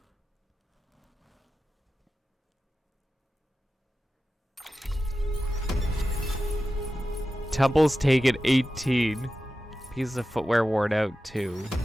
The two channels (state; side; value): normal; both; correlation 0.93